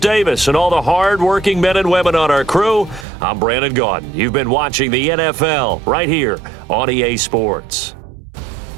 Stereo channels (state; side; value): drops out; left; at 3.1 s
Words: Davis, and all the hard-working men and women on our crew, I'm Brandon Gaudin. You've been watching the NFL right here on EA Sports.